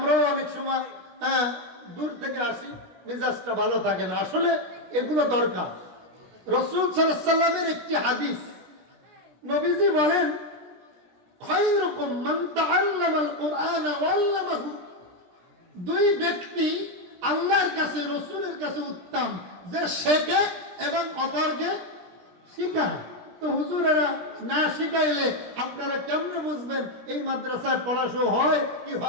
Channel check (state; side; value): late; left; 17 ms